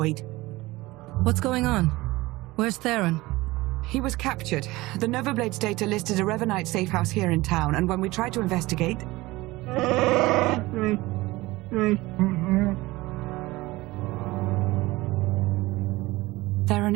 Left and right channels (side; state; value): left; quieter; 20.0 dB